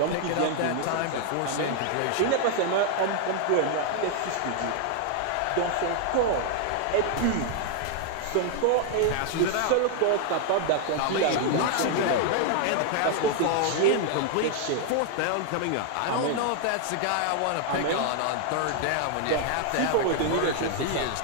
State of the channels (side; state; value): both; different; correlation 0.00